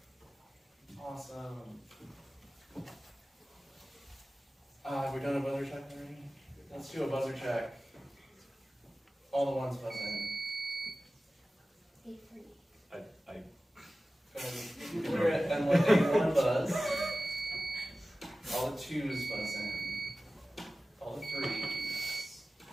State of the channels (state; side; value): normal; both; correlation 0.96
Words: Awesome. We've done a buzzer check already? Let's do a buzzer check. All the ones buzz in. Clear it and let A1 buzz. All the 2s buzz in. All the 3s.